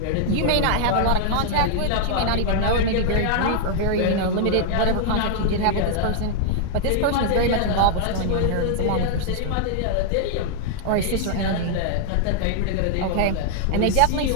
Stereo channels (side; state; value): both; different; correlation 0.00